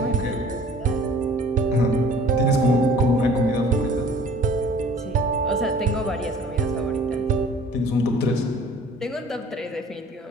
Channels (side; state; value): both; normal; correlation 0.50